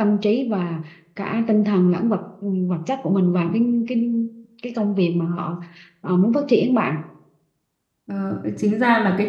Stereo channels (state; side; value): identical; both; correlation 1.00